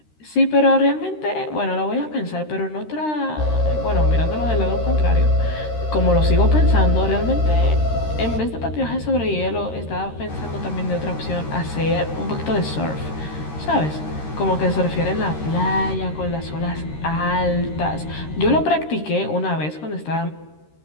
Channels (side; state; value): right; late; 13 ms